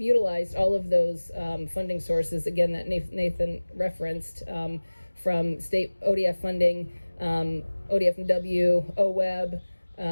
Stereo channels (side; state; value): both; inverted; correlation -1.00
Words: utilized all of those funding sources, again, that Nathan referenced, from state ODF funding, ODF&W, OWEB,